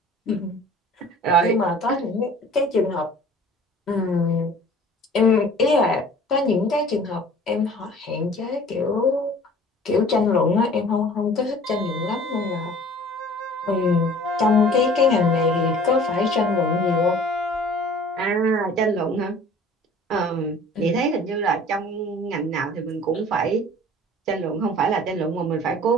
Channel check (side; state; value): both; normal; correlation 0.48